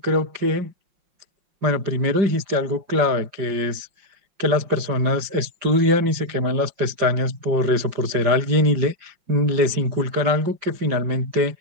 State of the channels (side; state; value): left; late; 5.1 ms